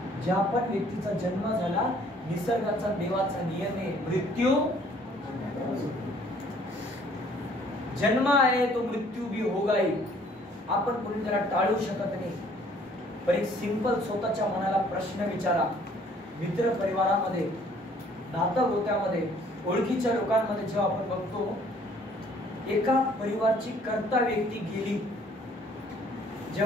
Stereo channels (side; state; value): both; normal; correlation 0.59